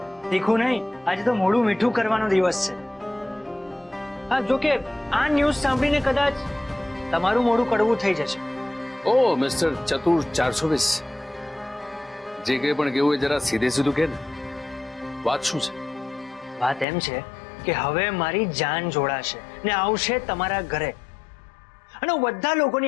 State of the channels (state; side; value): drops out; right; at 16.9 s